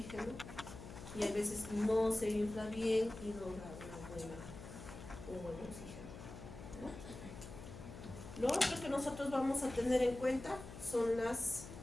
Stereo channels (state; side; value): noise; left; hum, 12 dB below the sound